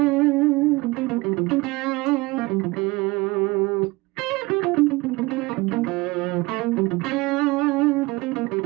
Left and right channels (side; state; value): left; quieter; 22.6 dB